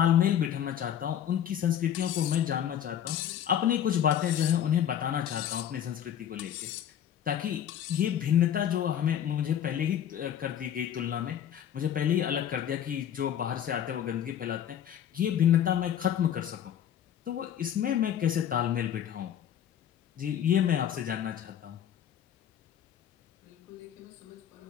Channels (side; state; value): right; quieter; 9.9 dB